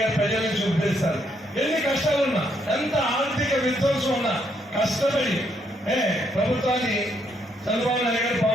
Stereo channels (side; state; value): both; normal; correlation 0.74